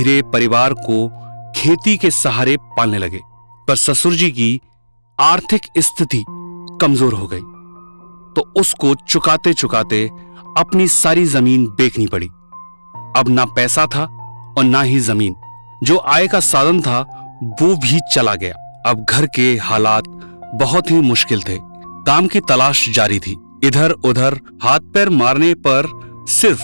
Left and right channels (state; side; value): inverted; both; correlation -1.00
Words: परिवार को खेती के सहारे पालने लगे, पर ससुर जी की आर्थिक स्थिति कमजोर हो गई, तो उसको चुकाते चुकाते अपनी सारी जमीन बेचनी पड़ी। अब ना पैसा था और ना ही जमीन, जो आय का साधन था वो भी चला गया। अब घर के हालात बहुत ही मुश्किल थे। काम की तलाश जारी थी। इधर उधर हाथ पैर मारने पर सिर्फ